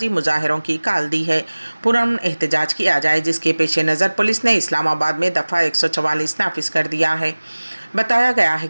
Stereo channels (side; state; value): both; inverted; correlation -1.00